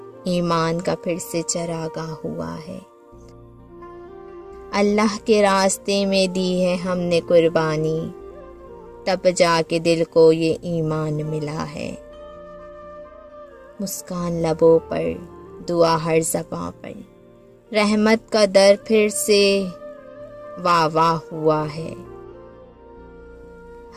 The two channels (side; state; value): both; identical; correlation 1.00